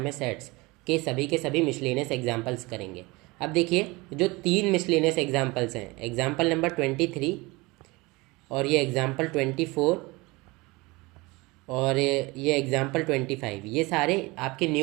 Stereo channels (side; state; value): left; quieter; 23.5 dB